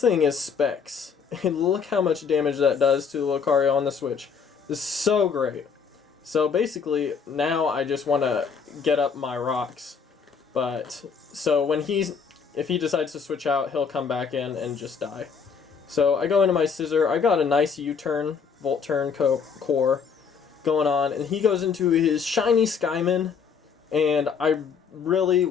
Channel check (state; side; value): quieter; right; 6.1 dB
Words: thing is Specs. And look how much damage that does to Lucario on the Switch. This is so great. So basically, now I just want to get up my rocks. But, so when if he decides to switch out, he'll come back in and just die. So I go into my Scissor. I got a nice U-turn, Volt Turn core going on. And he goes into his shiny Skymin. And I really